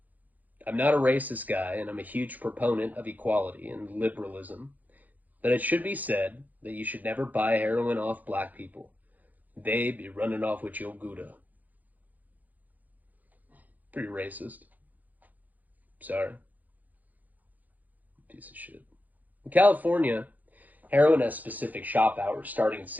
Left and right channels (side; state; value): left; late; 0.082 ms